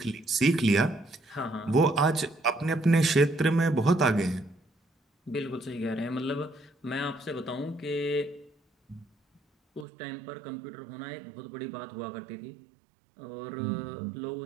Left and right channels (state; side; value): drops out; left; at 9.9 s